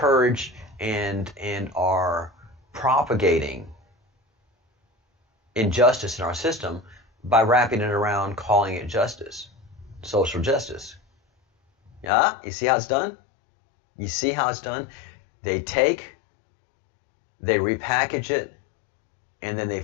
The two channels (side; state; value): right; drops out; at 12.1 s